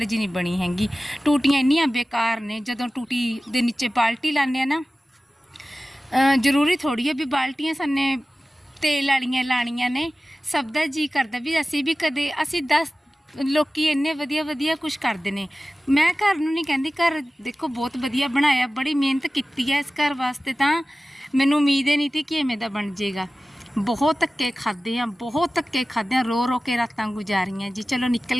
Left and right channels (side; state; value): both; normal; correlation 0.96